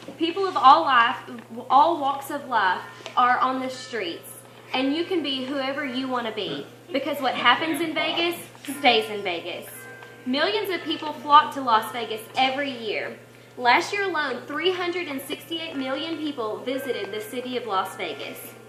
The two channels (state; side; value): identical; both; correlation 1.00